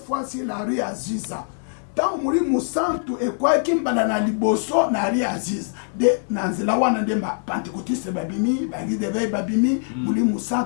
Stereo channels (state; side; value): silent; right; 63 dB below the other